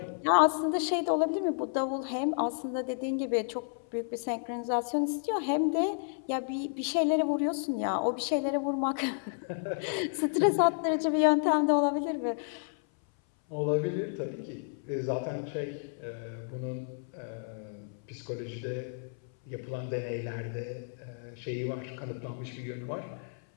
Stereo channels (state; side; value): silent; right; 57 dB below the other